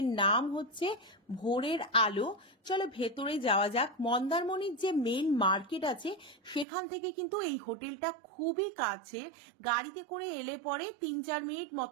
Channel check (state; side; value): drops out; left; at 6.7 s